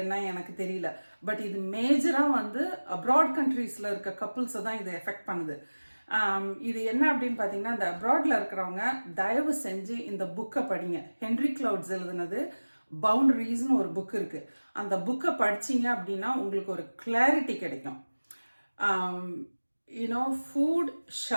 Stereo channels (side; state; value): both; inverted; correlation -1.00